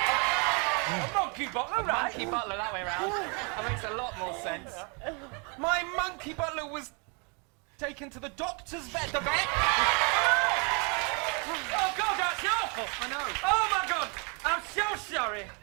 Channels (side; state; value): left; quieter; 34.1 dB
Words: A monkey butler, right? Monkey butler, that way around. That makes a lot more sense. My monkey butler was taken to the doctor's vet. The vet? Oh, God, that's awful! I know. Oh, my God! I'm so sorry.